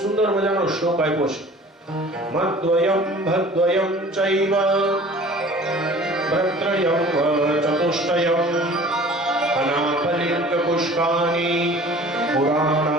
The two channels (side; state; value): both; normal; correlation 0.46